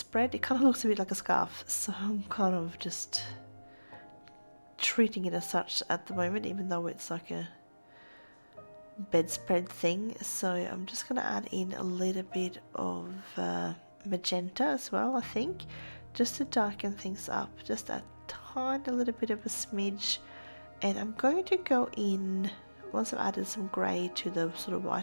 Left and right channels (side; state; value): both; inverted; correlation -1.00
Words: It kind of looks a bit like a scarf, so I'm kind of just treating it as such at the moment, even though it's like a bedspread thing. So I'm just going to add in a little bit of magenta as well, I think, just to darken things up, just a tiny little bit of a smidge. And I'm going to go in, once I've added some grey to the sort of